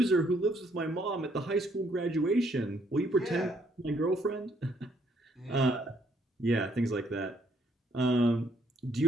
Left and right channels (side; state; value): both; normal; correlation 0.69